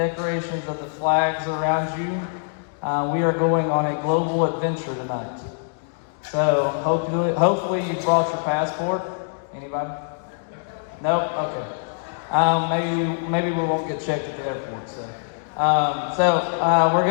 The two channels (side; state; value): right; silent; digital silence